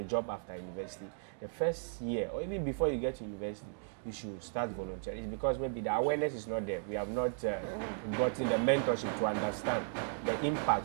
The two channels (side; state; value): left; silent; digital silence